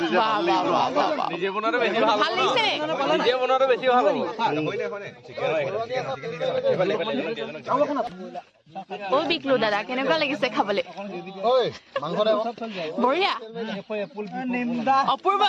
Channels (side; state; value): both; identical; correlation 1.00